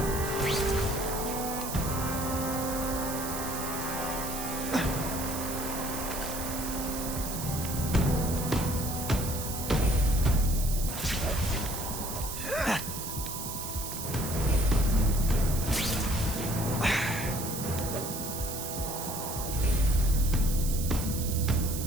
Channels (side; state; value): right; noise; hiss, 6 dB below the sound